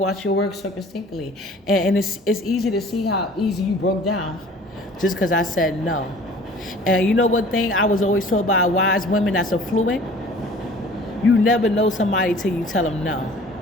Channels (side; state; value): both; normal; correlation 0.48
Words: your work circumspectly. And it's easy to see how easy you broke down just because I said no. And you know what thing I was always told by wise women that's affluent? You never know somebody till you tell them no.